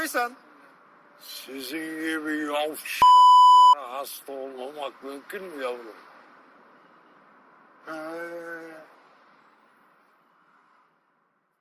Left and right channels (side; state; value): both; identical; correlation 1.00